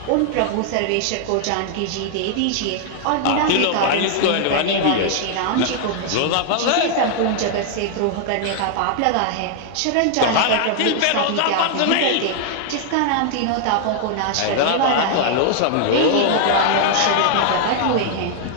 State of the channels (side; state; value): both; different; correlation 0.00